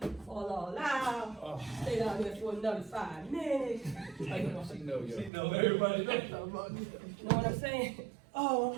fall all out. Stay down there for another 5 minutes. She know everybody knows. You know what I'm saying? Oh,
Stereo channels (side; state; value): left; drops out; at 5.3 s